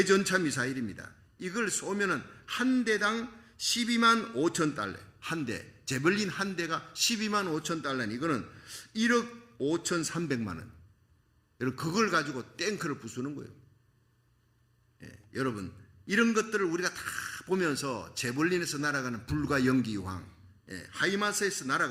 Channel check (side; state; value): both; identical; correlation 1.00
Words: 미사일입니다. 이걸 쏘면은 한 대당 12만 5천 달러. 한 대. 제벌린 한 대가 12만 5천 달러니 이거는 1억 5천3백만 원. 여러분, 그걸 가지고 탱크를 부수는 거예요. 예, 여러분, 이런 것들을 우리가 다 보면서 제벌린에서 날아가는 불과 연기 유황, 예, 하이마스에서